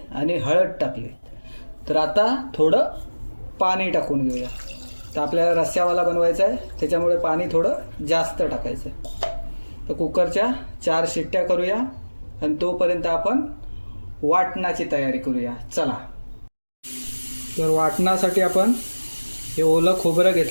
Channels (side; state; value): both; inverted; correlation -1.00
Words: आणि हळद टाकली। तर आता थोडं पाणी टाकून घेऊया। तर आपल्याला रस्स्यावाला बनवायचा आहे, त्याच्यामुळे पाणी थोडं जास्त टाकायचं आहे। तर कुकरच्या 4 शिट्ट्या करूया आणि तोपर्यंत आपण वाटणाची तयारी करूया। चला। तर वाटणासाठी आपण हे ओलं खोबरं